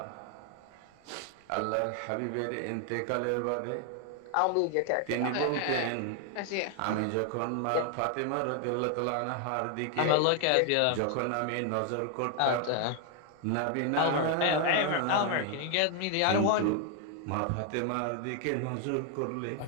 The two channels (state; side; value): different; both; correlation 0.00